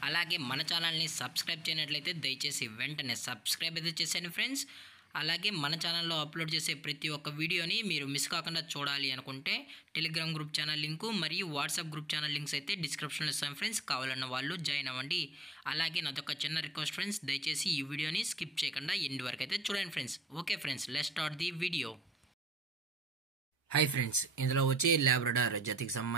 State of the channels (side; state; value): both; normal; correlation 0.71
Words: అలాగే మన ఛానల్ని సబ్స్క్రైబ్ చేయనట్లయితే దయచేసి వెంటనే సబ్స్క్రైబ్ అయితే చేసేయండి ఫ్రెండ్స్. అలాగే మన ఛానల్లో అప్లోడ్ చేసే ప్రతి ఒక్క వీడియోని మీరు మిస్ కాకుండా చూడాలి అనుకుంటే టెలిగ్రామ్ గ్రూప్ ఛానల్ లింకు మరియు వాట్సాప్ గ్రూప్ ఛానల్ లింక్స్ అయితే డిస్క్రిప్షన్లో ఇస్తాను ఫ్రెండ్స్. కావాలన్న వాళ్ళు జాయిన్ అవ్వండి. అలాగే నాదొక చిన్న రిక్వెస్ట్ ఫ్రెండ్స్, దయచేసి ఈ వీడియోని స్కిప్ చేయకుండా ఎండ్ వరకు అయితే చూడండి friends. Okay friends, let's start the video. Hi friends, ఇందులో వచ్చి లాబ్రడార్ జాతికి